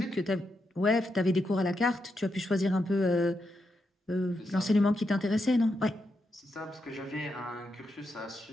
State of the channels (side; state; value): both; normal; correlation 0.84